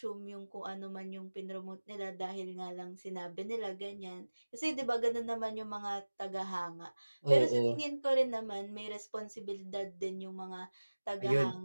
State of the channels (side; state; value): both; inverted; correlation -1.00